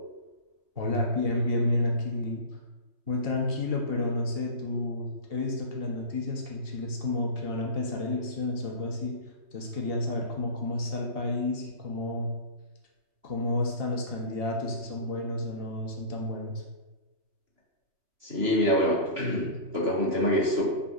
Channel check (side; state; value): left; late; 2.8 ms